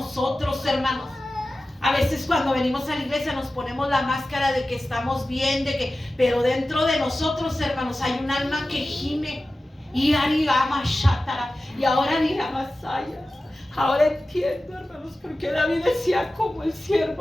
hermanos. A veces cuando venimos a la iglesia nos ponemos la máscara de que estamos bien, pero dentro de nosotros, hermanos, hay un alma que gime. Y ahora ni Masaya. Ahora entiendo, hermanos, porque David decía como el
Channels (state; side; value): normal; both; correlation 0.95